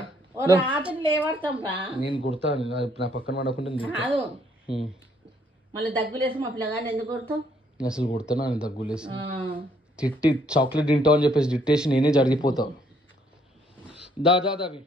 రాత్రి లేవడతాం రా నేను కుడతా నా పక్కన పడకుండా కాదు మళ్ళీ దగ్గులేసి మా పిల్లగాని ఎందుకు కొడతావు? అసలు కుడతాను అని దగ్గులేసి తిట్టి చాక్లెట్ తింటావు అని చెప్పేసి తిట్టేసి నేనే జరిగిపోతావు. దా అవి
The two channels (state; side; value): normal; both; correlation 0.67